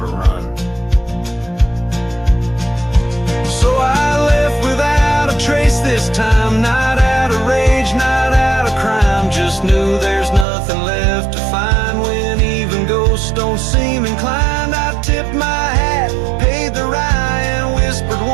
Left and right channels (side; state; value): left; drops out; at 10.5 s